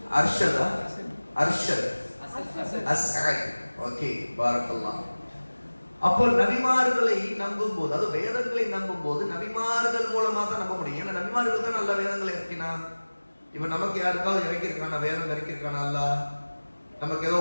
அர்ஷதா? அர்ஷத் அஸ்அத். ஓகே, பாரக்கல்லாஹ். அப்போ நபிமார்களை நம்பும் போது, அது வேதங்களை நம்பும் போது நபிமார்கள் மூலமா தான் நம்ப முடியும். ஏன்னா நபிமார்கள் தான் நல்ல வேதங்களை இறக்கினான். இப்ப நமக்கு யாருக்காவது இறக்கிருக்கானா? வேதம் இறக்கிருக்கானா? அல்லாஹ் நமக்கு ஏதோ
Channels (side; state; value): both; inverted; correlation -1.00